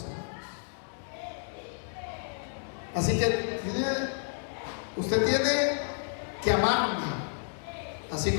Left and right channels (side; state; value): right; silent; digital silence